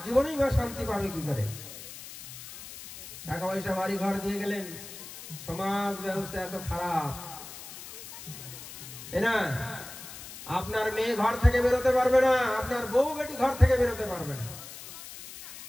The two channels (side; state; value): left; noise; hiss, 13 dB below the sound